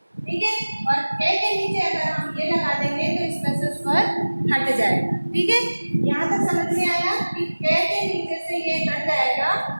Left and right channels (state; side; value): inverted; both; correlation -1.00